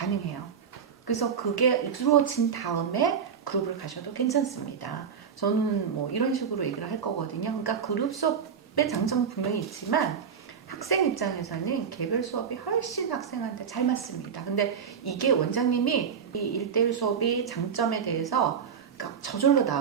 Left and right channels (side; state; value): left; quieter; 7.1 dB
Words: 그래서 그게 이루어진 다음에 그룹을 가셔도 괜찮습니다. 저는 뭐 이런 식으로 얘기를 할 거거든요. 그러니까 그룹 수업의 장점은 분명히 있지만 학생 입장에서는 개별 수업이 훨씬 학생한테 잘 맞습니다. 근데 이게 원장님이 이 1대1 수업이 장점에 대해서 그러니까 저절로